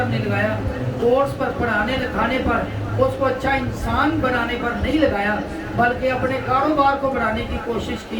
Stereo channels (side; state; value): both; identical; correlation 1.00